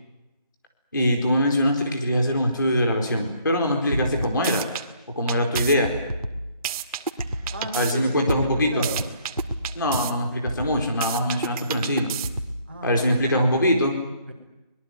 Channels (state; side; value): inverted; both; correlation -0.64